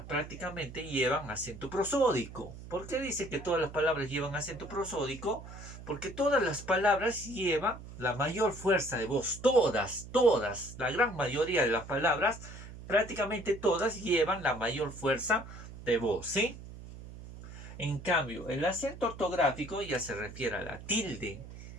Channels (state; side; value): noise; right; hum, 14 dB below the sound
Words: prácticamente llevan acento prosódico. ¿Por qué dice que todas las palabras llevan acento prosódico? Porque todas las palabras llevan la mayor fuerza de voz. Todas, la gran mayoría de las palabras, prácticamente todas llevan la mayor fuerza de voz, ¿sí? En cambio, el acento ortográfico ya se refiere a la tilde.